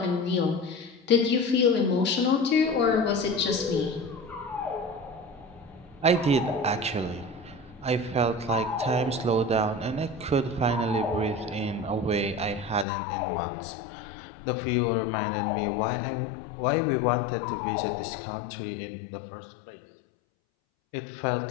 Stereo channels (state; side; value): drops out; right; at 12.9 s